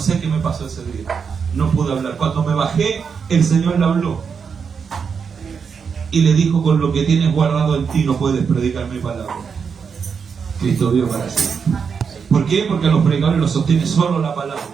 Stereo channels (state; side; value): quieter; left; 6.2 dB